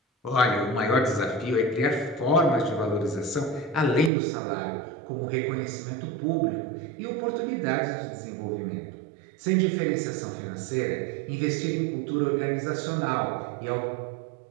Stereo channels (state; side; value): drops out; left; at 4.1 s